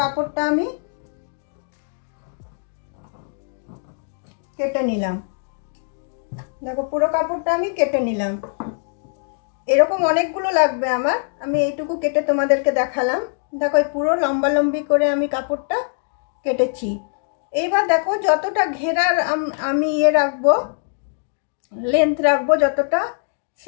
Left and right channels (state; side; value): silent; right; digital silence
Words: কাপড়টা আমি কেটে নিলাম। দেখো পুরো কাপড়টা আমি কেটে নিলাম। এরকম অনেকগুলো লাগবে আমার, আমি এইটুকু কেটে তোমাদেরকে দেখালাম। দেখো পুরো লম্বা লম্বি করে আমি কাপড়টা কেটেছি। এইবার দেখো যতটা ঘেরার আমি রাখবো, লেন্থ রাখবো যতটা,